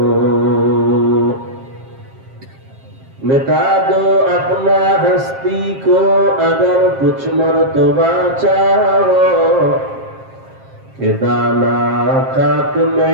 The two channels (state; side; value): late; left; 7.5 ms